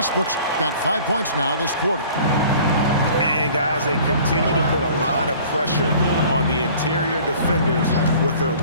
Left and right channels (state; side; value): inverted; both; correlation -0.49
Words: got 5 points now this quarter. And guys, they continue to put a lot of pressure on the interior defenders with their